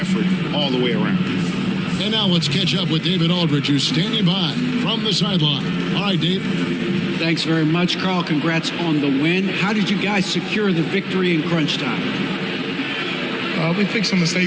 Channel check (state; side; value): identical; both; correlation 1.00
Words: all the way around. And now let's catch up with David Aldridge, who's standing by from the sideline. All right, Dave. Thanks very much, Carl. Congrats on the win. How did you guys secure the victory in crunch time? We fixed some